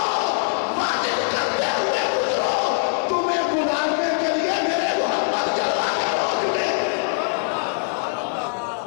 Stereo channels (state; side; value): silent; right; 56 dB below the other